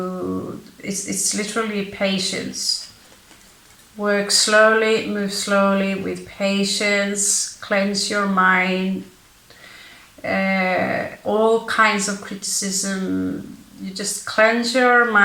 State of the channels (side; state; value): both; identical; correlation 1.00